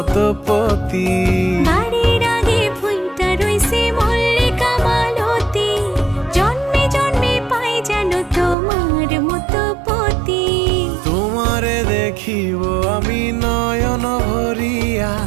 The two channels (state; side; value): drops out; left; at 8.6 s